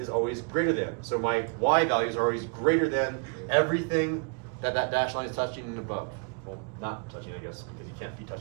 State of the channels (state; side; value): quieter; left; 36.5 dB